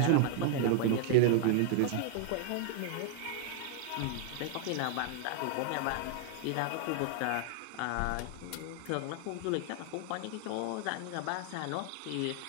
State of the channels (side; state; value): both; different; correlation 0.00